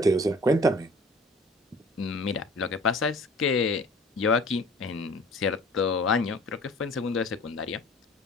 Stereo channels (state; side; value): normal; both; correlation 0.48